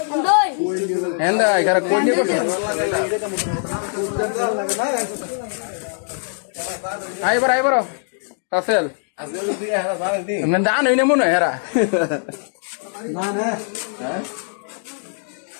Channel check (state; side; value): silent; right; 65 dB below the other